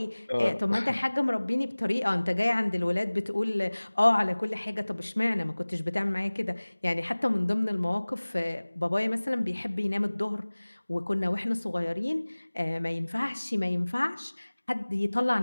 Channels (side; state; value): both; inverted; correlation -1.00